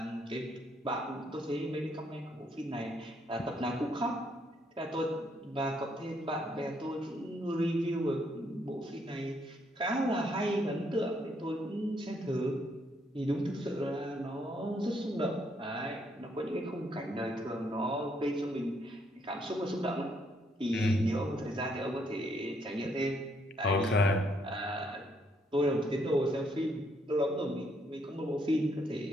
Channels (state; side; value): normal; both; correlation 0.72